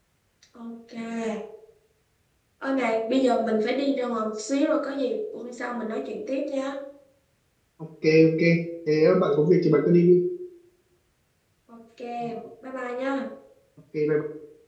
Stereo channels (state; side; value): identical; both; correlation 1.00